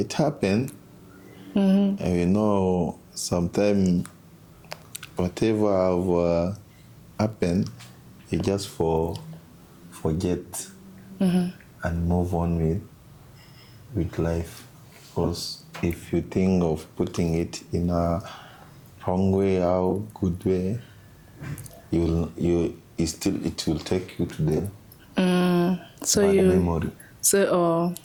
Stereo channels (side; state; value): both; identical; correlation 1.00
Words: happened. And you know, sometimes whatever have happened, you just forget and move on with life. Because if you think of putting it in a wrong way or good way, it will take you to the bad memory. So,